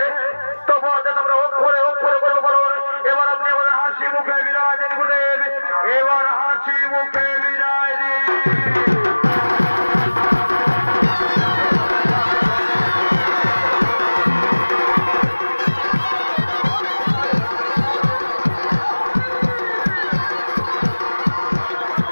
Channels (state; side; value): inverted; both; correlation -1.00